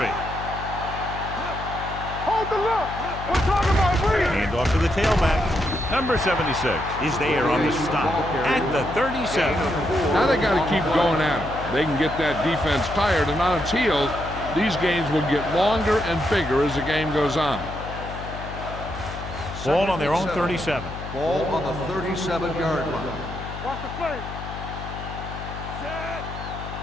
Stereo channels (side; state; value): left; noise; hum, 10 dB below the sound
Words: Hold the look. We're talking about breathing. Hand off to the tailback. Number 76 is there on the stop at the 37. Now they got to keep going at it. They can get that defense tired and on its heels. These games will get longer and bigger as the game goes on. Ball on their own 37. Ball on the 37-yard line. Watch the play. Set.